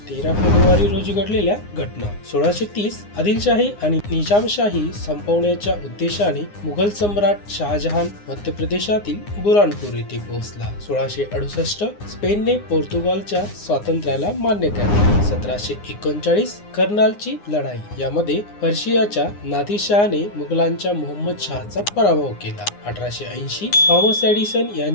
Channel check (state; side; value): late; right; 9.7 ms